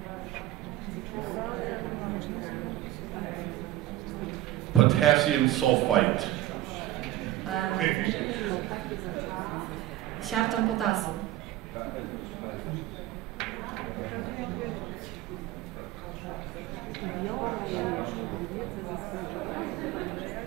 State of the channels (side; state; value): left; quieter; 14.9 dB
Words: Potassium sulfite. Siarczan potasu.